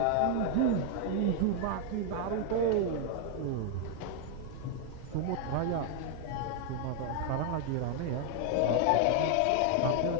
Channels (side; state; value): both; different; correlation 0.00